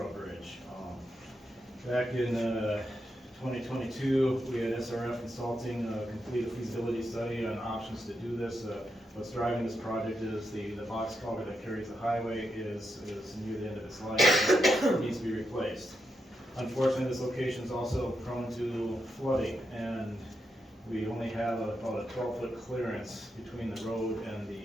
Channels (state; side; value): normal; both; correlation 0.84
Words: Bridge. Back in 2022, we had SRF Consulting complete a feasibility study on options to do this. What's driving this project is the box culvert that carries the highway is near the end of its life and needs to be replaced. Unfortunately, this location is also prone to flooding, and we only have about a 12-foot clearance between the road and